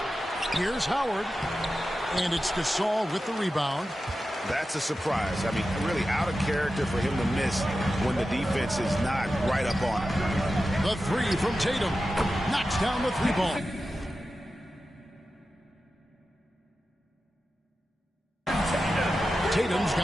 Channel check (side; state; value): both; normal; correlation 0.92